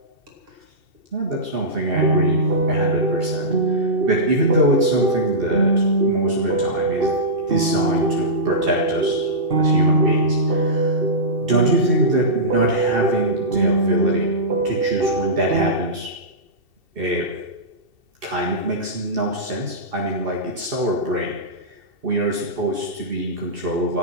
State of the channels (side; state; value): left; late; 2.7 ms